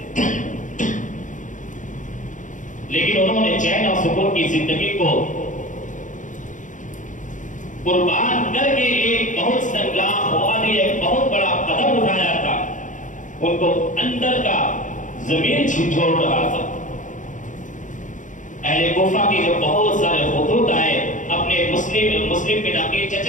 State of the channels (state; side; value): late; right; 0.37 ms